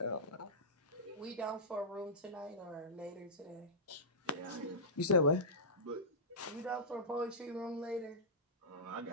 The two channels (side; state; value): both; normal; correlation -0.16